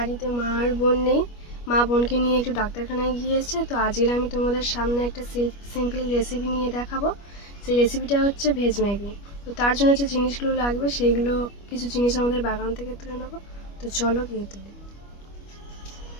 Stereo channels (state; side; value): late; right; 25 ms